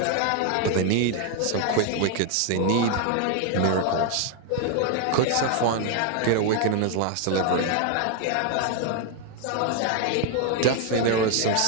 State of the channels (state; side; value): different; both; correlation 0.00